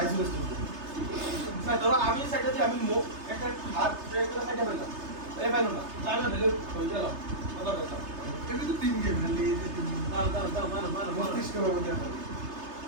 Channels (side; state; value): left; late; 3.3 ms